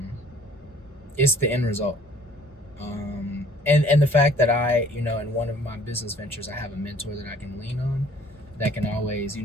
it's the end result. And the fact that I, in one of my business ventures, I have a mentor that I can lean on, that can always,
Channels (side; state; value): both; normal; correlation 0.55